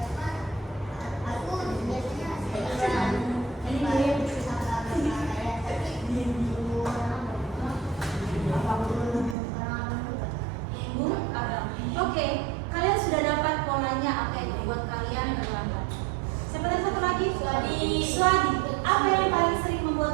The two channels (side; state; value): left; drops out; at 9.3 s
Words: Oke, kalian sudah dapat polanya apa yang membuat kalian terlambat. Siapa tadi satu lagi? Swadi. Apa yang paling sering